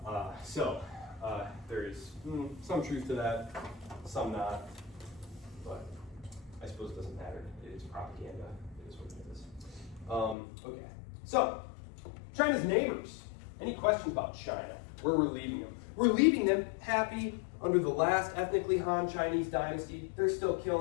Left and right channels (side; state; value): right; drops out; at 10.4 s